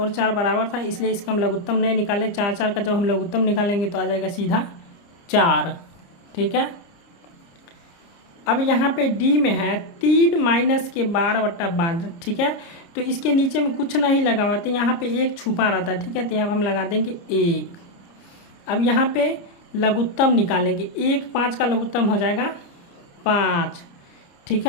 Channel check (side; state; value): right; late; 29 ms